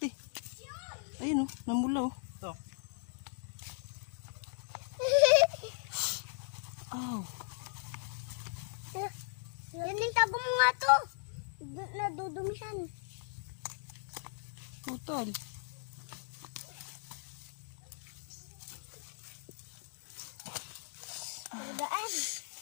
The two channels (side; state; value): right; silent; digital silence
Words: eh. Ayun oh. Namula oh. Ito. Aw. Yan yung tabong mo nga to. Nadudumisan. Putol. Daan.